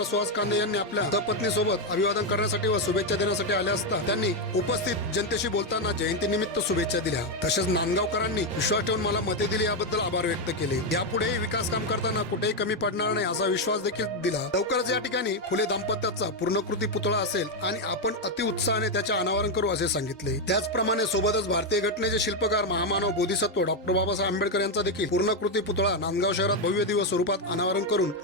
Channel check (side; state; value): both; normal; correlation 0.04